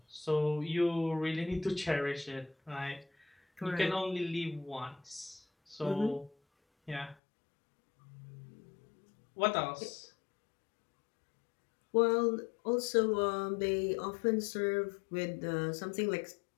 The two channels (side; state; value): right; drops out; at 7.2 s